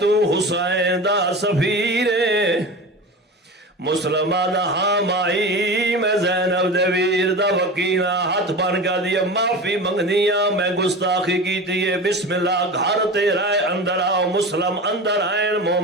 تو حسین دا سفیرے. مسلمہ دا ہاں مائی میں زینب دے ویر دا وکینہ ہاتھ بن کا دیئے معافی منگ دیا میں گستاخی کی دیئے. بسم اللہ گھر تیرا ہے اندر آؤ. مسلم اندر آئیں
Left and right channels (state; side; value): normal; both; correlation 0.31